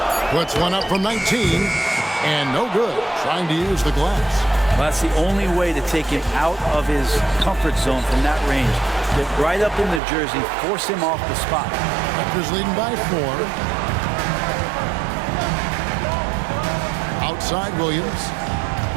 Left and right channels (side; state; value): left; drops out; at 10.0 s